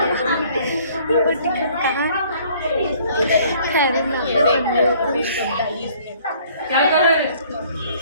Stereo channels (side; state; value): both; inverted; correlation -0.57